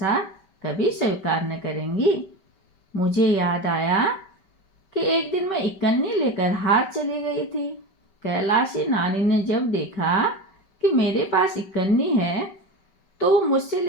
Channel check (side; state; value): right; late; 5.2 ms